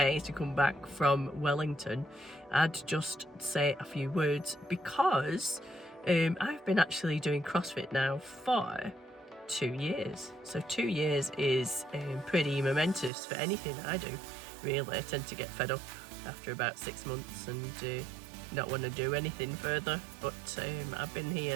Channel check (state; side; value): drops out; left; at 13.1 s